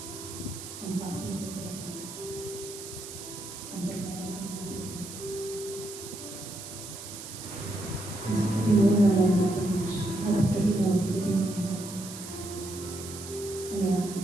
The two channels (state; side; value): noise; right; hiss, 11 dB below the sound